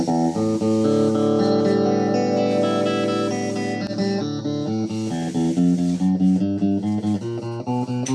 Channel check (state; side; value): identical; both; correlation 1.00